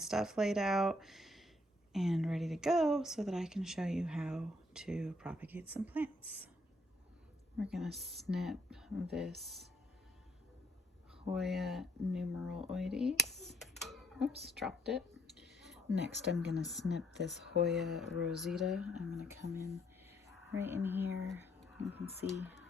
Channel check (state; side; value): normal; both; correlation 0.69